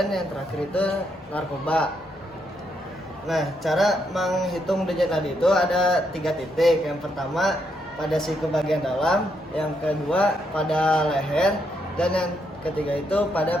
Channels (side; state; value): both; normal; correlation 0.77